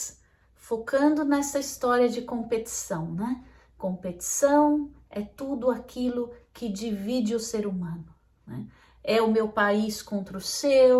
focando nessa história de competição, né? Competição é tudo aquilo que divide o ser humano, né? É o meu país contra o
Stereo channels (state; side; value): identical; both; correlation 1.00